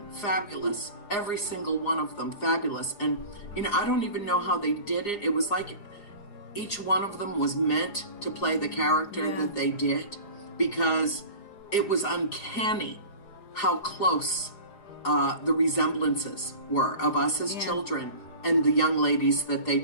fabulous. Every single one of them, fabulous. And, I don't even know how they did it. It was like each one of them was meant to play the character that they did, because it was uncanny how close the resemblances were of us as children and the young ladies that they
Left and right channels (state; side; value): late; right; 4.9 ms